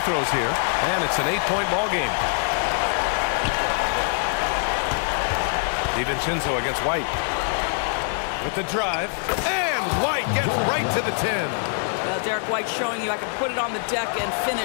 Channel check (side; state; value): right; silent; 63 dB below the other